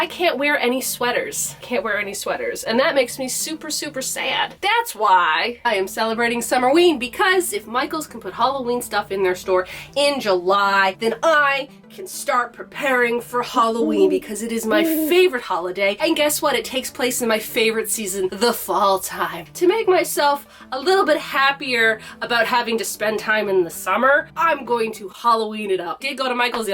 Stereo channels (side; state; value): both; identical; correlation 1.00